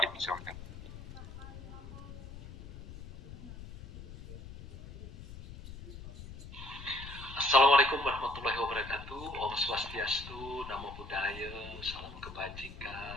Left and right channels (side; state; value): left; noise; rumble, 13 dB below the sound